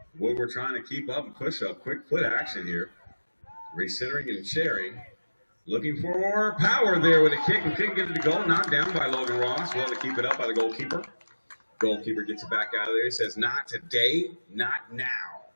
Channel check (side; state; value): both; inverted; correlation -1.00